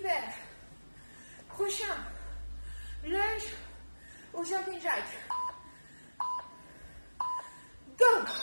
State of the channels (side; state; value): both; inverted; correlation -1.00